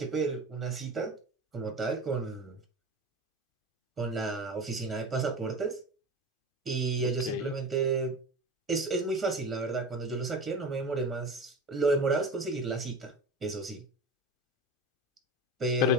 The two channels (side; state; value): both; normal; correlation 0.30